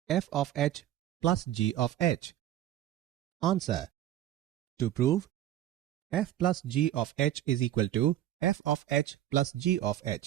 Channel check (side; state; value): left; quieter; 12.5 dB